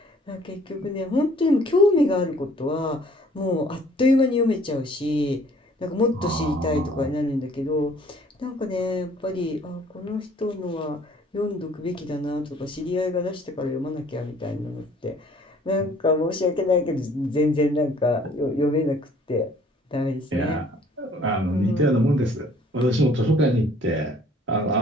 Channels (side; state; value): both; normal; correlation 0.57